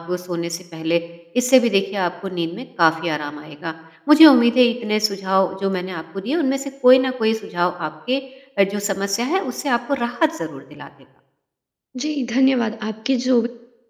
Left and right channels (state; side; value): identical; both; correlation 1.00